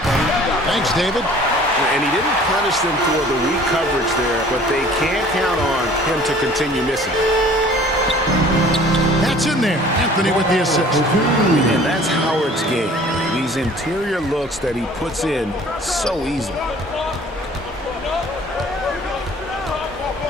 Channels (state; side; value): normal; both; correlation 0.50